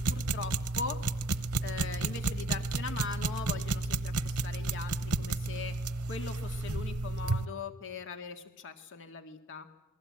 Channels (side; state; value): both; normal; correlation 0.58